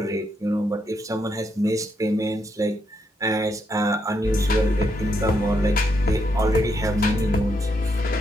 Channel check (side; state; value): both; normal; correlation 0.78